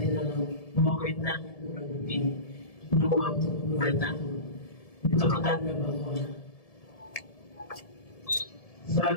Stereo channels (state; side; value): late; right; 1.7 ms